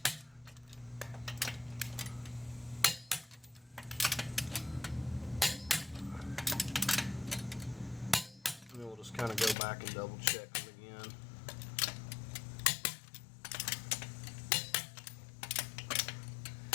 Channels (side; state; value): right; drops out; at 9.6 s